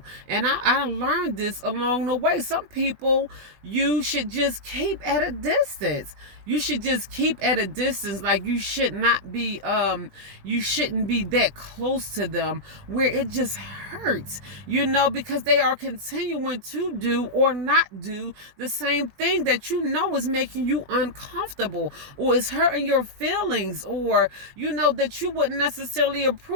And I learned this along the way. Some people you should just keep at a distance. You should just keep at a distance. Like, you shouldn't be that close to them where it just hurts, because they are continuing to do or not do the same thing that is making you uncomfortable, or is hurting your feelings, or that you wouldn't necessarily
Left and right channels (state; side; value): late; left; 20 ms